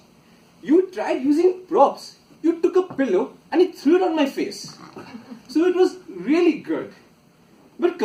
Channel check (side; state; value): both; identical; correlation 1.00